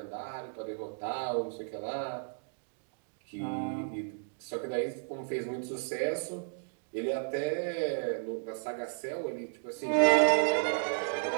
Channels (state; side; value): silent; left; digital silence